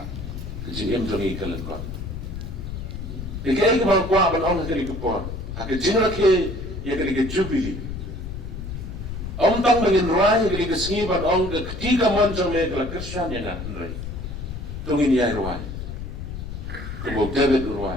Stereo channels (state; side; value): noise; left; rumble, 7 dB below the sound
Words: kejim jongi kalen kon dikay ke bang kwa ban ong kali ke por ak jinra ke ye kali ke jubili om tang mengin rai kali ke singi ban ong ke ketiga monjong me kala krisyan ya na nrai tungin ya rai ke bo David